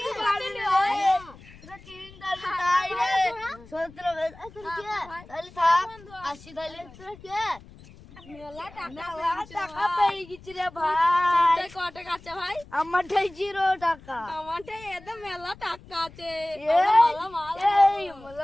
পারবি তোরা চিনি তাই রে সত্র তাহলে থাক আসি তাহলে তোরা কে মেলা টাকা পেয়ে গেছি রে ভাই কত টাকা আছে ভাই আমারটাই 0 টাকা আমারটা এত মেলা টাকা আছে এই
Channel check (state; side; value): noise; left; rumble, 21 dB below the sound